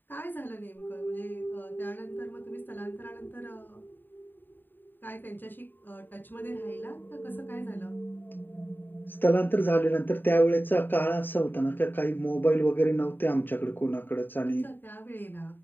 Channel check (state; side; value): late; right; 0.093 ms